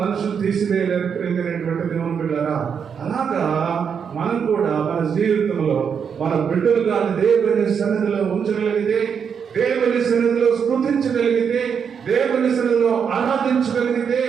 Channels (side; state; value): left; quieter; 6.9 dB